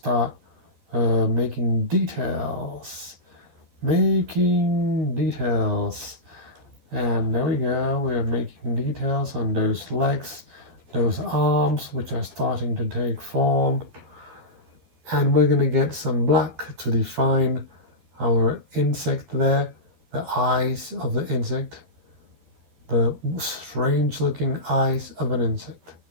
making details. And there we go. We're making details on those legs, those arms, which are starting to take form. And we're gonna get some black to define our insect there, the eyes of the insect, the strange looking eyes of an insect.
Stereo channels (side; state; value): left; late; 12 ms